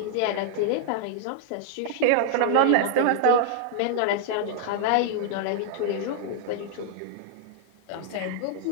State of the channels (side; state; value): both; different; correlation -0.01